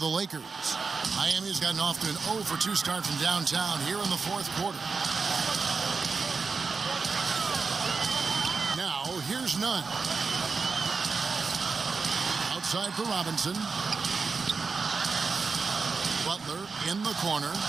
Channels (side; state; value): left; quieter; 4.7 dB